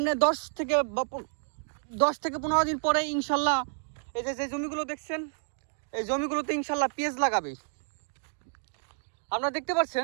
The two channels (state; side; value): silent; left; digital silence